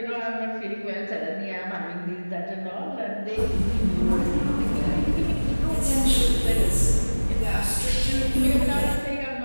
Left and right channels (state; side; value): inverted; both; correlation -1.00